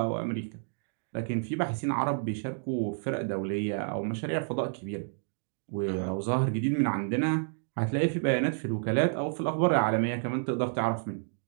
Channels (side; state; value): left; silent; digital silence